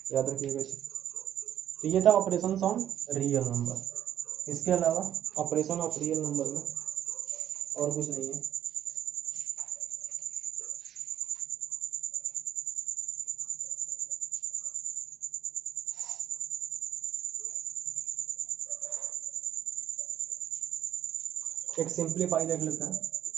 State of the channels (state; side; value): quieter; left; 10.6 dB